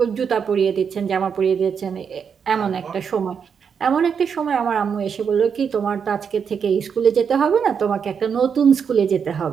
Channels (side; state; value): left; quieter; 6.8 dB